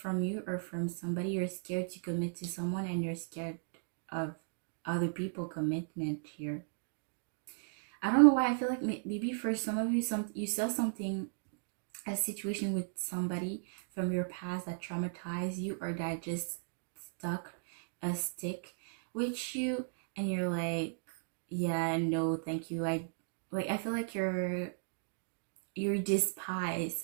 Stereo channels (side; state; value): left; silent; digital silence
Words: you or from somebody, you're scared to commit to someone and you're scared of other people commitment here. I don't know why. I feel like maybe for some of you, you saw something, a situation with somebody from your past that traumatized you or that just stuck a stick with you, and you're like, yeah, no, thank you. I feel like you're despise